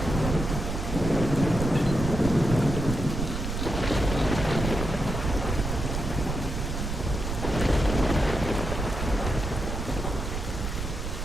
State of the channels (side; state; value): right; noise; rumble, 4 dB below the sound